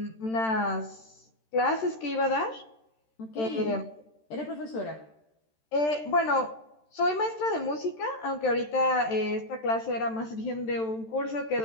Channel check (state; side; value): late; right; 13 ms